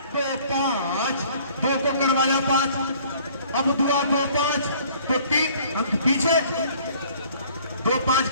तो 5, 2 को करवाया 5, अब दुआ 2 5 तो 3 अंक पीछे, 2 5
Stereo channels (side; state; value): both; inverted; correlation -0.55